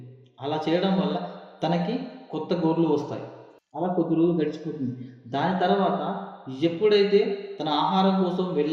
అలా చేయడం వల్ల తనకి కొత్త గోర్లు వస్తాయి. అలా కొద్ది రోజులు గడిచిపోతుంది. దాని తర్వాత ఎప్పుడైతే తన ఆహారం కోసం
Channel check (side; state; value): both; identical; correlation 1.00